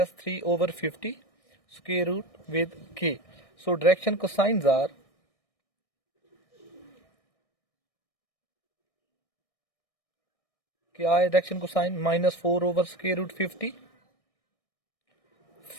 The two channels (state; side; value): late; right; 1.6 ms